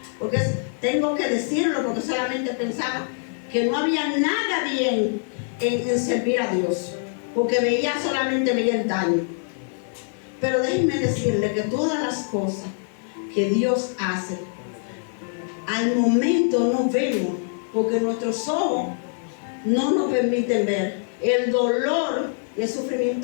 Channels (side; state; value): right; silent; 63 dB below the other